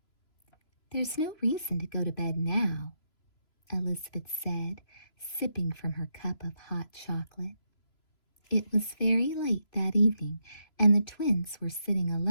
There's no reason to go to bed now, Elizabeth said, sipping from her cup of hot chocolate. It was very late that evening, and the twins were sitting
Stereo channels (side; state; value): right; late; 3.0 ms